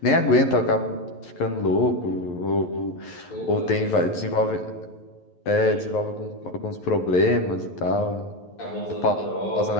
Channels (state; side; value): late; right; 11 ms